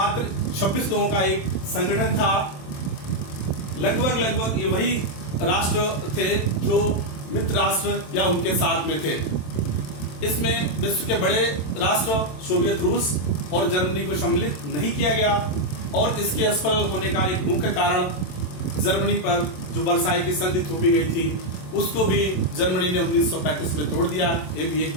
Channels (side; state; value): right; late; 27 ms